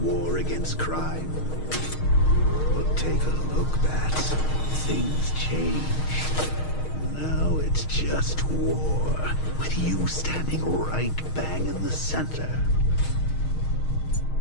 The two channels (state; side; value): late; right; 6.4 ms